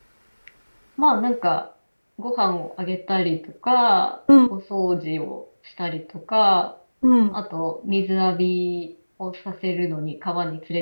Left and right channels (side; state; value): both; inverted; correlation -1.00